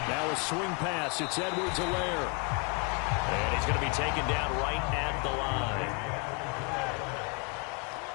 Now a swing pass. It's Edwards-Helaire. And he's going to be taken down right at the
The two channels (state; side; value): quieter; right; 33.4 dB